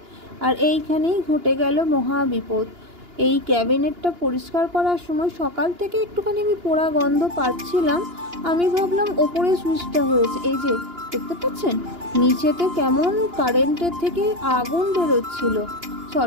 আর এইখানেই ঘটে গেল মহা বিপদ। এই ক্যাবিনেটটা পরিষ্কার করার সময় সকাল থেকে একটুখানি আমি পোড়া গন্ধ পাচ্ছিলাম। আমি ভাবলাম ওপরে সুইচটা হয়েছে, এই যে দেখতে পাচ্ছেন নিচেতে কেমন কারেন্টের থেকে আগুন বেরোচ্ছিল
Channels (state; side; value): late; left; 2.9 ms